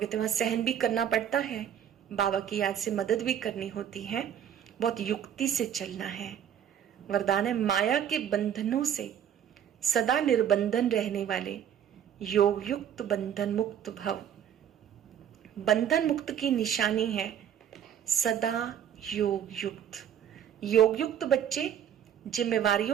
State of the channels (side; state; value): left; quieter; 9.4 dB